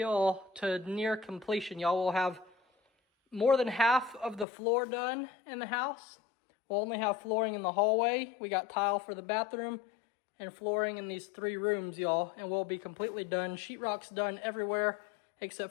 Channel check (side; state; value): right; drops out; at 4.5 s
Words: to near completion. Y'all will have more than half of the floor done in the house. We'll only have flooring in the hallway. We got tile for the bathroom and flooring in these 3 rooms, y'all. And we'll be completely done. Sheetrock's done everywhere except